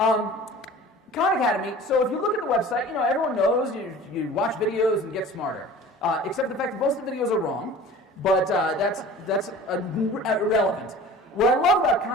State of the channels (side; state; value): both; normal; correlation 0.42